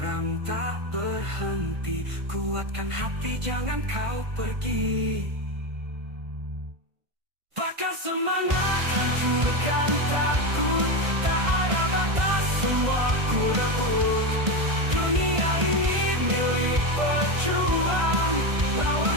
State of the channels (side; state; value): left; late; 1.5 ms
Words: tak berhenti. Kuatkan hati, jangan kau pergi. Bakar semangat, hancurkan takut. Tak ada batas, semua ku rebut. Dunia ini milik pejuang, lawan